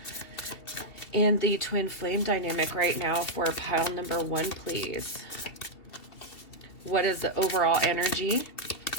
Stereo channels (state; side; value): late; right; 2.8 ms